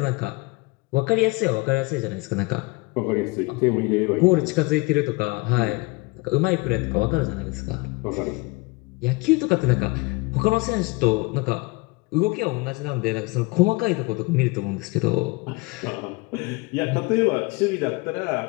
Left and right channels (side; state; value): right; quieter; 25.2 dB